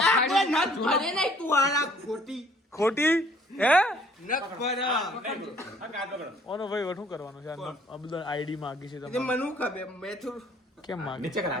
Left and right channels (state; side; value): normal; both; correlation 0.59